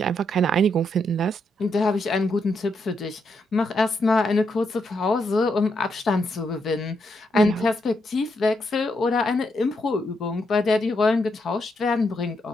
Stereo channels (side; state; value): both; normal; correlation 0.80